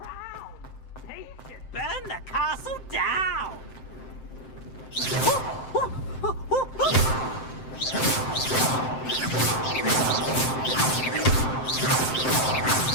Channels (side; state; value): right; late; 7.7 ms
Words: They should burn the castle down!